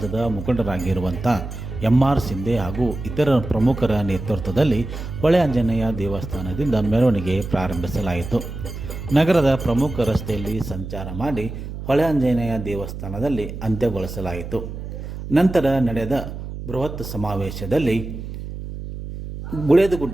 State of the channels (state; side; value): noise; right; hum, 9 dB below the sound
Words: ಮುಖಂಡರಾಗಿರುವಂಥ MR ಸಿಂಧೆ ಹಾಗೂ ಇತರ ಪ್ರಮುಖರ ನೇತೃತ್ವದಲ್ಲಿ ಹೊಳೆ ಆಂಜನೇಯ ದೇವಸ್ಥಾನದಿಂದ ಮೆರವಣಿಗೆ ಪ್ರಾರಂಭಿಸಲಾಯಿತು. ನಗರದ ಪ್ರಮುಖ ರಸ್ತೆಯಲ್ಲಿ ಸಂಚಾರ ಮಾಡಿ ಹೊಳೆ ಆಂಜನೇಯ ದೇವಸ್ಥಾನದಲ್ಲಿ ಅಂತ್ಯಗೊಳಿಸಲಾಯಿತು. ನಂತರ ನಡೆದ ಬೃಹತ್ ಸಮಾವೇಶದಲ್ಲಿ